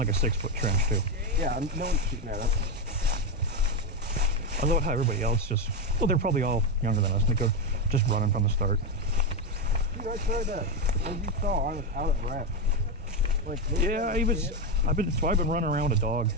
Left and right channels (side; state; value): both; normal; correlation 0.07